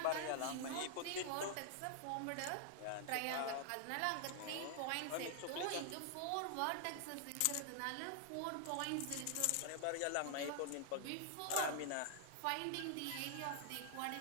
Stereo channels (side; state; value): both; different; correlation 0.00